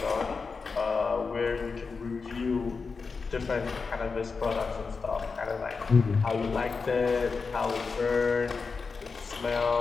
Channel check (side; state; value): right; quieter; 4.8 dB